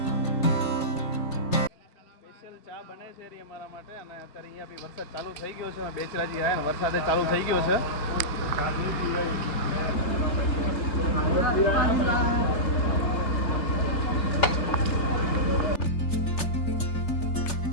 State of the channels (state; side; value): late; right; 3.5 ms